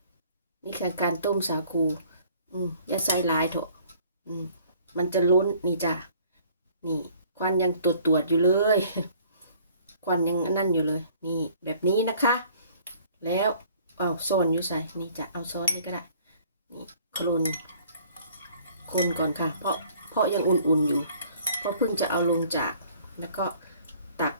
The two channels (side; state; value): both; inverted; correlation -0.57